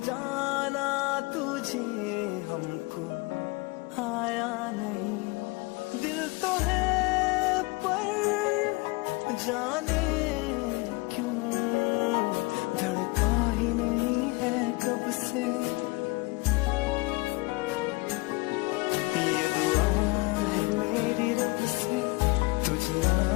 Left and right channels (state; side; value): quieter; right; 25.4 dB